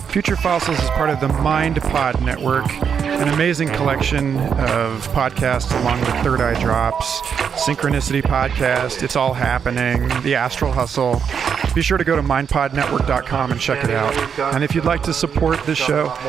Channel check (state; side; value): quieter; left; 7.1 dB